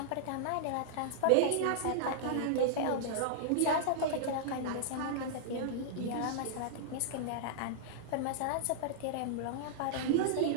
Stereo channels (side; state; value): both; different; correlation -0.01